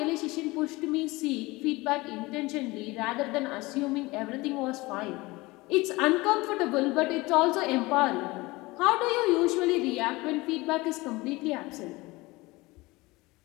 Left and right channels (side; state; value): right; quieter; 21.9 dB